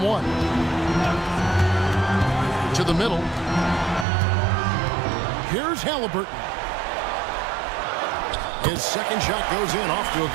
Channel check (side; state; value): left; drops out; at 4.0 s